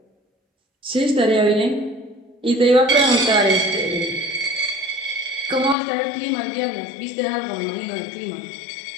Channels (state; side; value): drops out; right; at 5.8 s